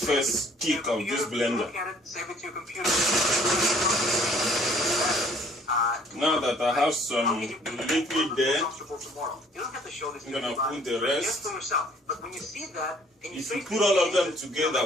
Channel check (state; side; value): normal; both; correlation 0.58